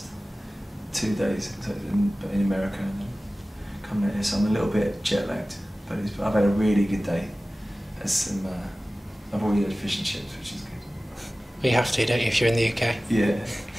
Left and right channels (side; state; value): both; normal; correlation 0.97